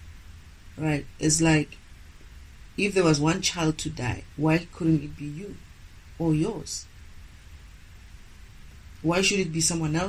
right? It's like, if there was one child to die, why couldn't it be you? or yours? Why should it be someone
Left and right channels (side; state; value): both; identical; correlation 1.00